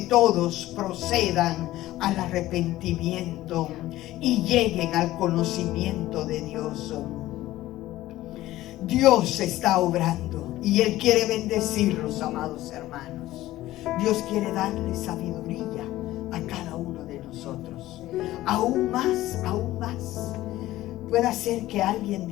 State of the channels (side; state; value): right; quieter; 15.8 dB